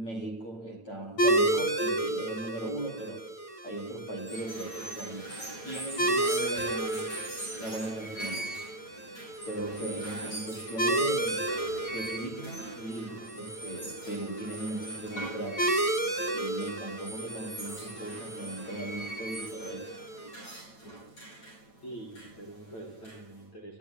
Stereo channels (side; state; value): right; late; 8.9 ms